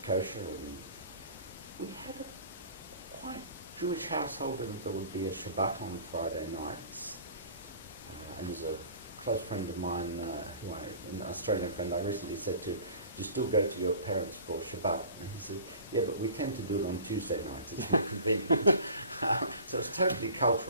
kosher, and we had a quite Jewish household, and there would be a Shabbat on Friday nights. And there's a close friend of mine, an Australian friend, I recently said to him, do you still go to your parents for Shabbat? And he said, yeah, but we tend to do it on Tuesday nights, it's more convenient. So it's totally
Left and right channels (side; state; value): both; inverted; correlation -0.45